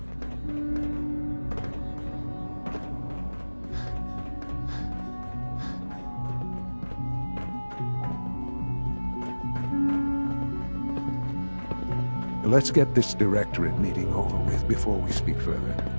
Let's get this Directorate meeting over with before we speak further.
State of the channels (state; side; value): inverted; both; correlation -1.00